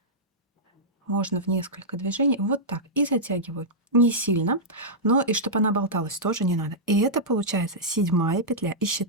можно в несколько движений, вот так, и затягиваю. Не сильно, но и чтобы она болталась тоже не надо. И это получается 7-я петля, и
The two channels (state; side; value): normal; both; correlation -0.11